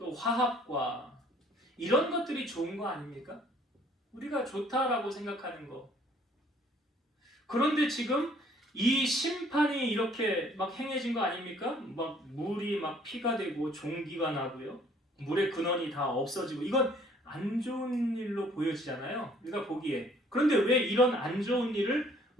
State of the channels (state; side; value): normal; both; correlation 0.59